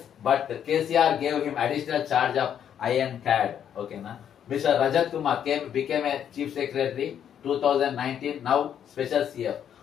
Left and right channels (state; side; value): quieter; right; 9.2 dB